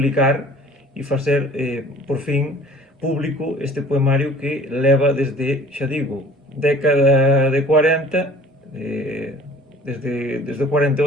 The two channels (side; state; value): both; normal; correlation 0.49